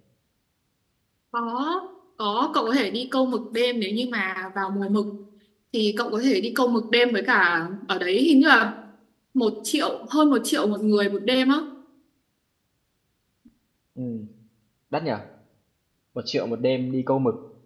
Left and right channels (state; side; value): identical; both; correlation 1.00